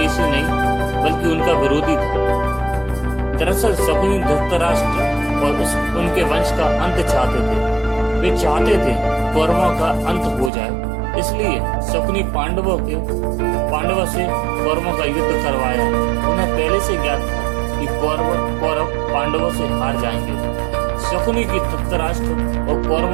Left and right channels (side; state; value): left; drops out; at 10.5 s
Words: नहीं बल्कि उनका विरोधी था। दरअसल शकुनी धृतराष्ट्र और उनके वंश का अंत चाहते थे। वे चाहते थे कौरवों का अंत हो जाए, इसलिए शकुनी पांडवों से कौरवों का युद्ध करवाया। उन्हें पहले से ज्ञात था कि कौरव पांडवों से हार जाएंगे। शकुनी की धृतराष्ट्र और